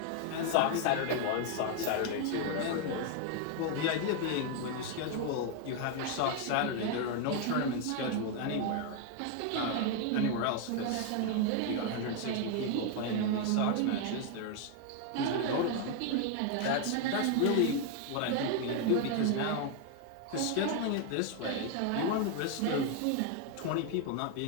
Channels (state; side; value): different; both; correlation 0.01